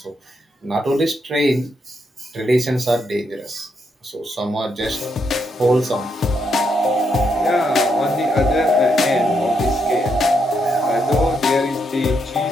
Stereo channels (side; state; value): both; normal; correlation 0.78